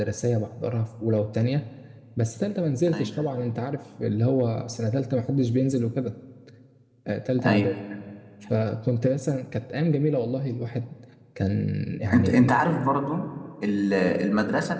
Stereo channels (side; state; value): both; identical; correlation 1.00